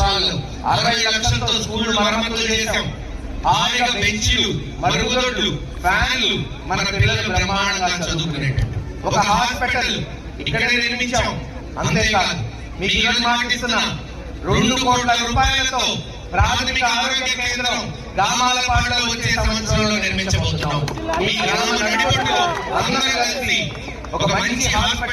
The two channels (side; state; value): both; identical; correlation 1.00